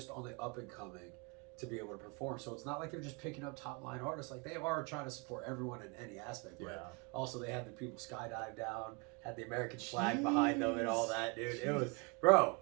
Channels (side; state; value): left; quieter; 29.6 dB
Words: on the up and coming to be able to perform. So it's not like they're just picking up top line artists. Like they are trying to support everyone in any aspect. But also they had the people skydive down, had the American flag behind them and all that, dude. It was, bro.